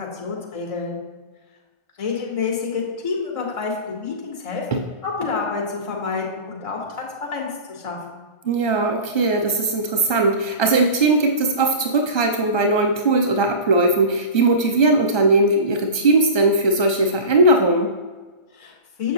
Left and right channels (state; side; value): late; right; 1.3 ms